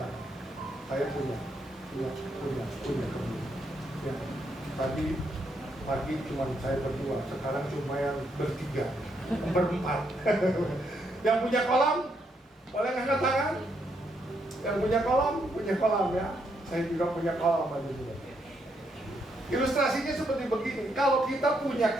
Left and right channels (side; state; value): both; normal; correlation 0.77